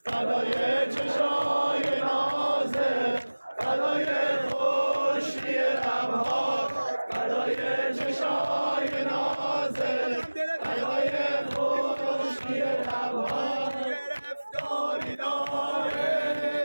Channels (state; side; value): inverted; both; correlation -1.00